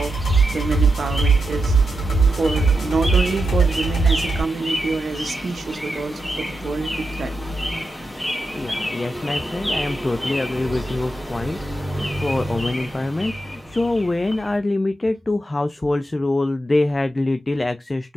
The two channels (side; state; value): both; normal; correlation 0.87